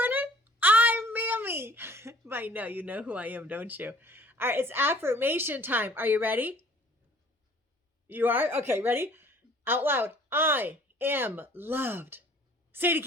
I'm Mammy. I know you know who I am, don't you? All right, it's affirmation time. Are you ready? You are? Okay, ready? Out loud. I am loved. Say it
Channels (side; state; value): both; normal; correlation 0.54